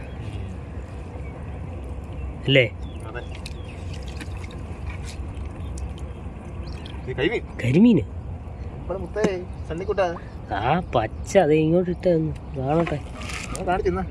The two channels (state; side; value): identical; both; correlation 1.00